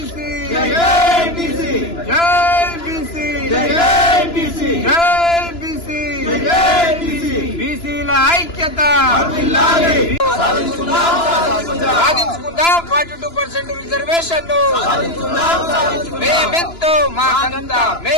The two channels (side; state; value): right; late; 2.9 ms